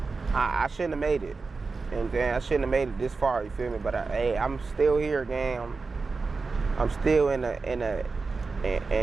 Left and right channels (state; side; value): quieter; left; 4.2 dB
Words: I shouldn't have made it. You know what I'm saying? I shouldn't have made it this far, you feel me? But hey, I'm still here, gang. I'm still in a